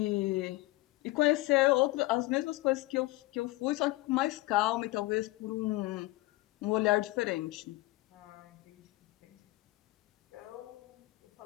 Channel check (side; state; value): right; quieter; 19.8 dB